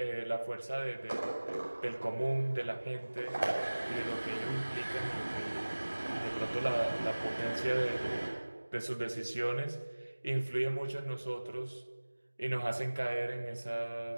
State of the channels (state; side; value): inverted; both; correlation -1.00